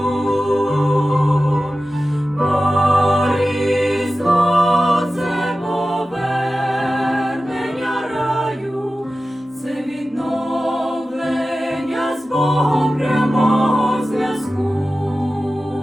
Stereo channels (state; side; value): normal; both; correlation 0.95